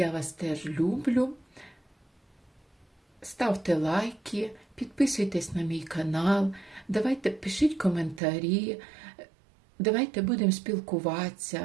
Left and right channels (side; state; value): left; drops out; at 8.2 s